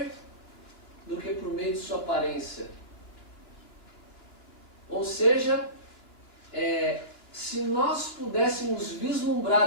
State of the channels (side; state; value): right; late; 2.9 ms